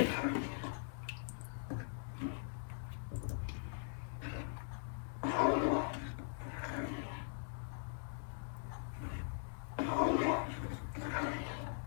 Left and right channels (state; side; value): silent; right; digital silence